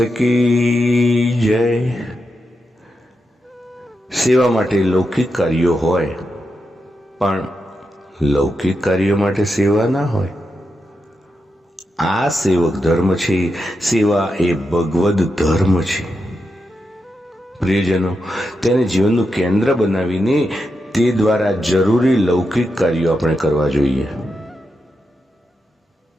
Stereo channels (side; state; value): both; normal; correlation 0.87